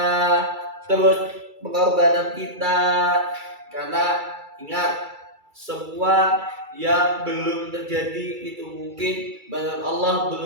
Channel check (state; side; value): late; left; 2.3 ms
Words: terus pengorbanan kita. Karena ingat, semua yang belum terjadi itu mungkin menurut Allah